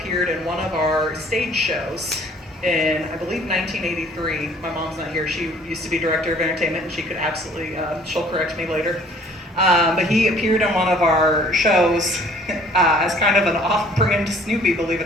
in one of our stage shows in, I believe, 1983. My mom's not here. She used to be director of entertainment, and she could absolutely, she'll correct me later. But he appeared in one of our shows as kind of an off-brand Snoopy, believe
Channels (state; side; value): normal; both; correlation 0.55